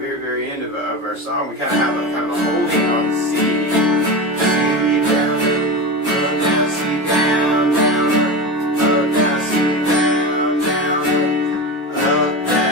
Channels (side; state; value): both; normal; correlation 0.24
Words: very end of our song, we kind of have a kind of a holding on the C.